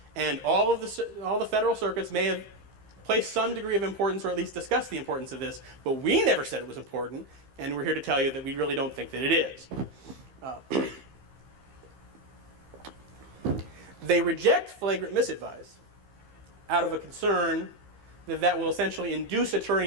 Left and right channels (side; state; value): left; late; 15 ms